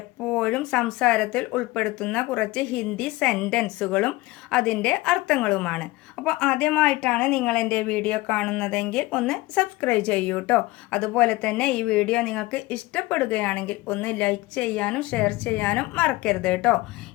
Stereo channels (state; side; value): quieter; right; 20.0 dB